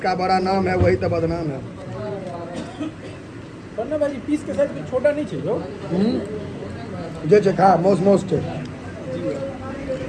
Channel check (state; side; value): identical; both; correlation 1.00